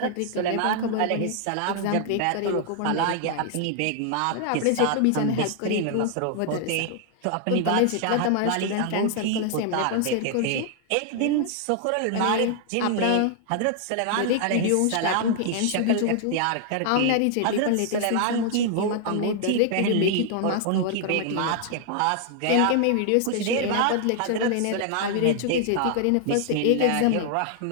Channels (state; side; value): different; both; correlation 0.00